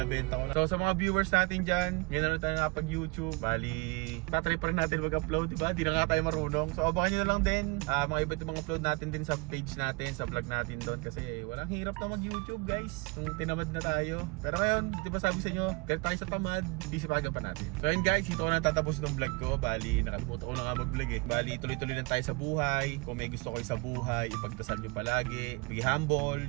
ko na. So sa mga viewers natin dyan, ngayon na tayo nakapag-YouTube. Bali, tatry pa rin natin mag-upload, diba? Di na nga tayo marunong. So abangan nyo na lang din mga iba't ibang upload natin din sa page natin, sa vlog natin doon. Kasi walang hirap na mag-YouTube guys, kung tinamad na tayo. Pero ngayon, di ba sabi sa inyo, galit tayo sa tamad, hindi sipagan pa natin. So yun guys, ito ko na tatapos ng vlog ko. Bali, nakalimutan ko na nga mag-vlog eh. Bali, tuloy-tuloy lang tayo sa buhay. Kung may gusto kayo sa buhay, ipagdasal nyo palagi. Be humble,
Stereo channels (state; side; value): quieter; left; 27.9 dB